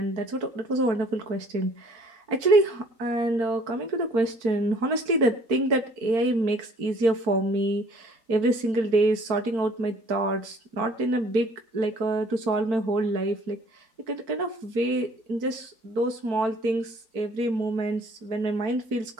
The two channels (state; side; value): late; left; 4.5 ms